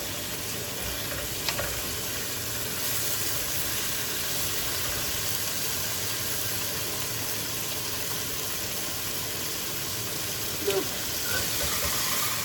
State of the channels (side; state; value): left; noise; hum, 24 dB below the sound